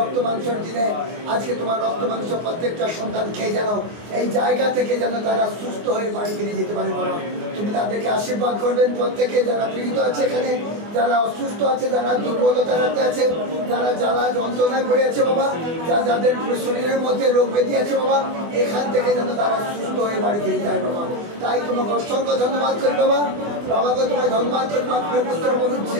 মাংসের দিনে আজকে তোমার রক্ত মাংস প্রত্যেকটা সন্তান খেয়ে যেন এই জায়গা থেকে যেন তারা সুস্থ হয়ে বাড়ি ফিরে যেতে পারে বাবা। তুমি তাদেরকে আশীর্বাদ করবেন। প্রত্যেকে যারা পীড়িত আছে এখানে, যারা অসুস্থ আছে, যারা দুর্বলতাতে আছে, যারা জ্বালা যন্ত্রণায় পড়ে আছে বাবা, যাদের শরীরের মধ্যে রোগ ব্যাধি আছে বাবা, এখান থেকে যেন তারা সুস্থ হয়ে বাড়ি ফিরে যায় বাবা। তাই তোমাকে অসংখ্য ধন্যবাদ করি বাবা। বাবাকে তোমায় ধন্যবাদ করি। পুত্র বলুন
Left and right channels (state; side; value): late; left; 24 ms